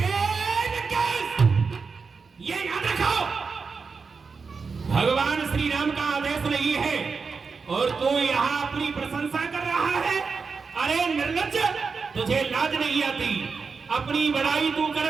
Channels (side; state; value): left; quieter; 5.0 dB